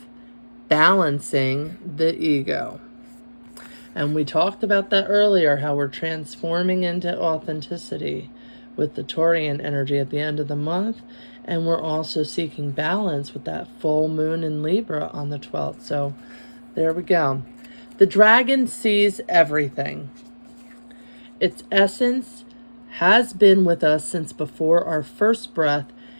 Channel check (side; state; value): both; inverted; correlation -1.00